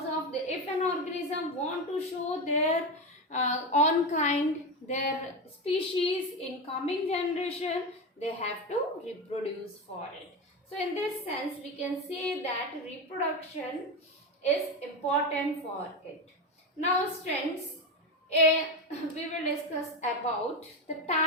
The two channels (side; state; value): both; normal; correlation 0.16